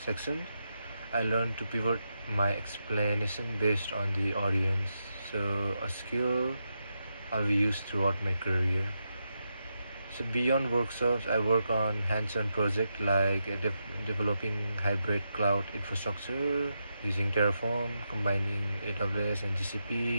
section, I learned to pivot my explanation based on the audience. So a skill I'll be used throughout my career. So beyond workshops, I work on hands-on projects like developing hybrid cloud infrastructure using Terraform, combining AWS and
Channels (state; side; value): inverted; both; correlation -0.85